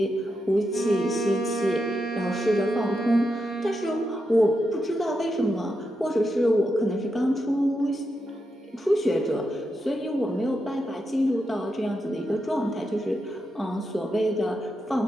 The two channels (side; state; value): both; normal; correlation 0.86